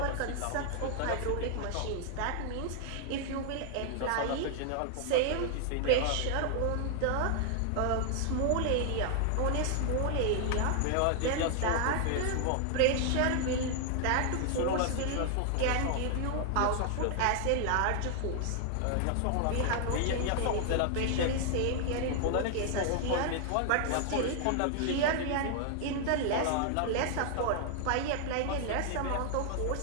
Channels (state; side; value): different; both; correlation 0.00